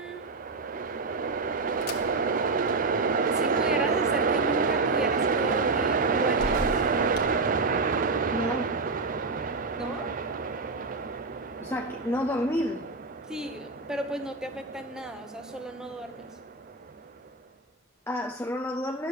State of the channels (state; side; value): quieter; left; 3.7 dB